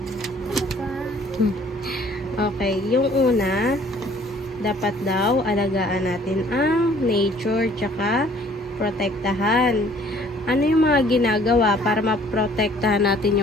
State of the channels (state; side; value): normal; both; correlation 0.57